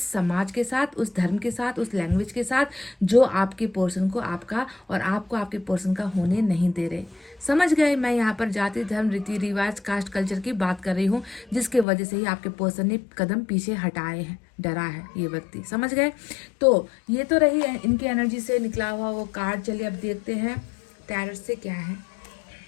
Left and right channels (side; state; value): right; drops out; at 11.9 s